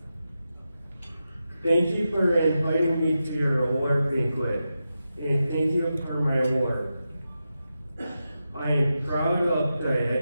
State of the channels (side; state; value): both; inverted; correlation -0.89